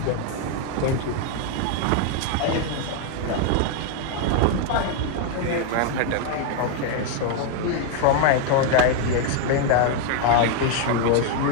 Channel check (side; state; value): both; different; correlation 0.00